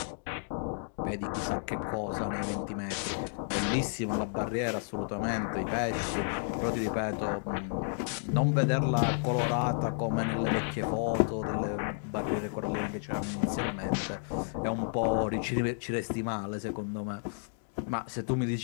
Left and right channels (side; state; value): right; silent; digital silence